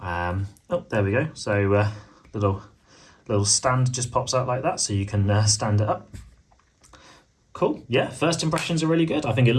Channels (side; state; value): both; identical; correlation 1.00